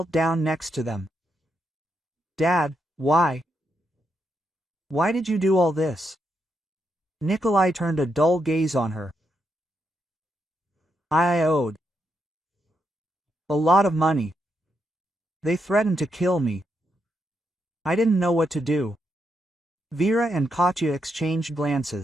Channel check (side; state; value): both; normal; correlation 0.81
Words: down next to them. "Dad, why? Why did you do all this?" Nikolai turned a dull gaze on her. "I owed a lot of money. They threatened to kill me. I didn't know what to do." Vera and Katya exchanged